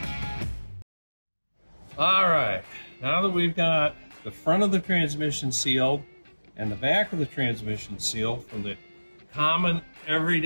All right, now that we've got the front of the transmission sealed and the back of the transmission sealed from the common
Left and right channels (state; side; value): inverted; both; correlation -1.00